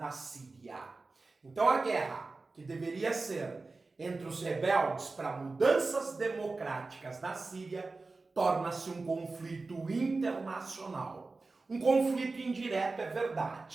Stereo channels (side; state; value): left; quieter; 3.7 dB